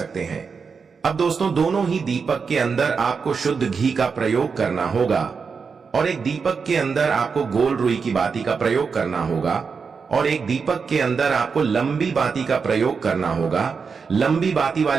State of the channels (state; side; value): quieter; left; 5.5 dB